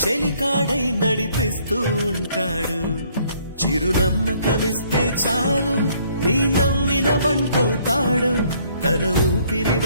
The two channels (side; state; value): both; inverted; correlation -0.64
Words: చెలికాడై నడిపిస్తూ ఉంటాడు చిరునమ్మకమిస్తే చాలు నీ నమ్మిన బంటవుతాడు తన ఊపిరి